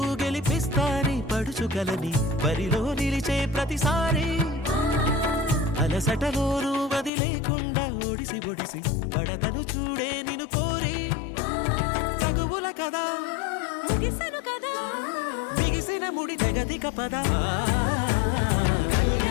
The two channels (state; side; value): drops out; right; at 7.1 s